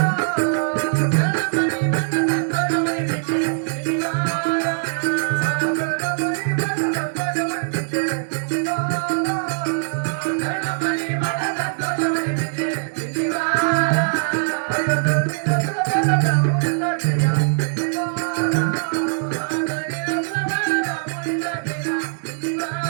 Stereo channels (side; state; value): left; silent; digital silence